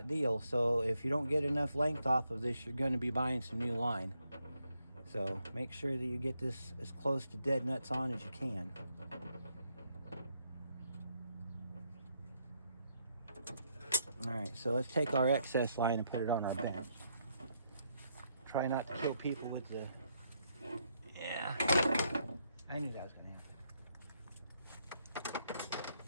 deal, so if you don't get enough length off of this, you're going to be buying some new line. So make sure that you get this as close to dead nuts on as you can. All right, so let's take our excess line and put it on our bench. Try not to kill people with the... Yeah, I knew that was going to happen.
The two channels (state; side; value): inverted; both; correlation -0.77